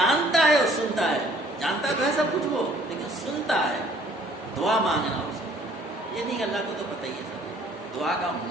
ہے اور سنتا ہے، جانتا تو ہے سب کچھ وہ، لیکن سنتا ہے۔ دعا مانگنا اس کو، یہ نہیں کہ اللہ کو تو پتہ ہی ہے سب، دعا کا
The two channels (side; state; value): both; normal; correlation 0.57